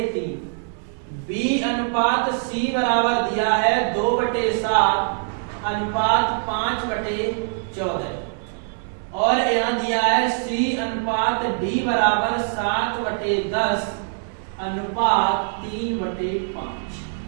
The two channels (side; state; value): left; silent; digital silence